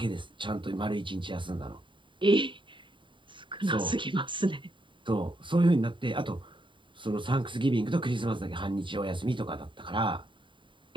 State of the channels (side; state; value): left; late; 0.24 ms